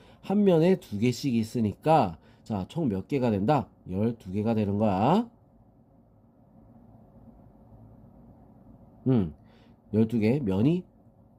한 면에 2개씩 있으니까 자, 총 몇 개가 된다? 12개가 되는 거야. 12개 면이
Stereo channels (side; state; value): both; identical; correlation 1.00